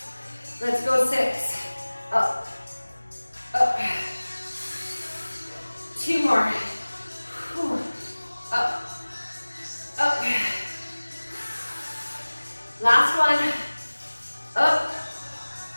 Let's go 6, up, up. 2 more. Whew. Up, up. Last one. Up,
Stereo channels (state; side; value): inverted; both; correlation -1.00